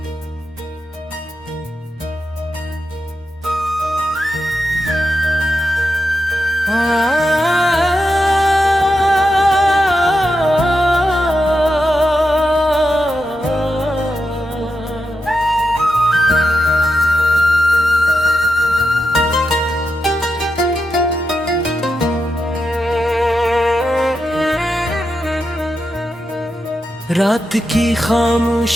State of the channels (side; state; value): both; normal; correlation 0.87